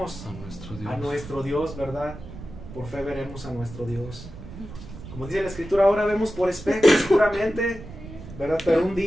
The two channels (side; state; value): right; noise; rumble, 14 dB below the sound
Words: a nuestro Dios, ¿verdad? Por fe veremos a nuestro Dios. Como dice la Escritura, ahora vemos por espejo seguramente, ¿verdad? Pero un